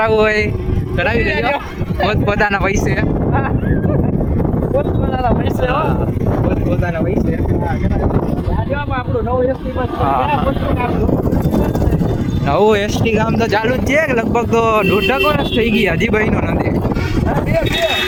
હોય કરાવી લેજો પોતપોતાના પૈસે. પોતપોતાના પૈસે હો. પોતપોતાના પૈસે. આપણું નવું એસટી બસ હા. નવું એસટી કામ તો ચાલુ જ છે લગભગ તો 1.5 વર્ષ થઈ ગયા હજી બન્યું નથી.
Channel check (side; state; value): both; identical; correlation 1.00